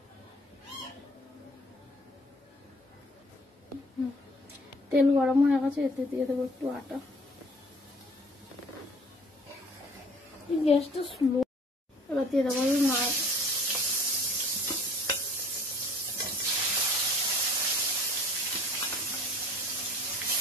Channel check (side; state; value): both; normal; correlation 0.52